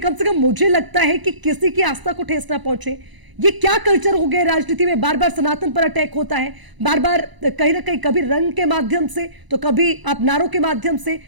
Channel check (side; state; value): left; late; 1.0 ms